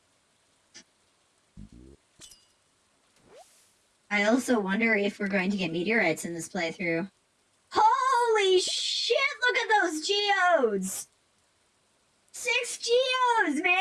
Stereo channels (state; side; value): identical; both; correlation 1.00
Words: I also wonder if we're going to get meteorites in this playthrough. Holy shit, look at those geodes! 6 geodes,